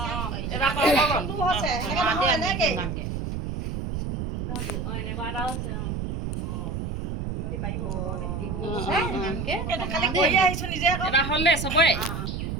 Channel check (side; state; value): right; noise; rumble, 4 dB below the sound